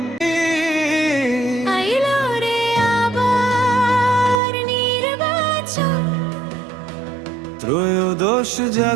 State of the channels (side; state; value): left; drops out; at 4.4 s